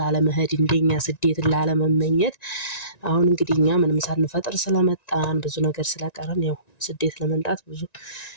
እንደኛ ስደት ላለመመኘት። አሁን እንግዲህ እኛ ምንም ሳንፈጥር ስለመጣን ብዙ ነገር ስለቀረን ያው ስደት ለመምጣት ብዙ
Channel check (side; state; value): right; late; 1.9 ms